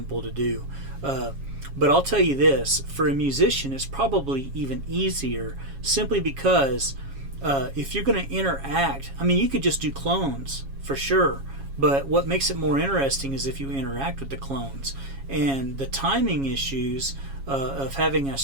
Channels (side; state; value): left; late; 7.3 ms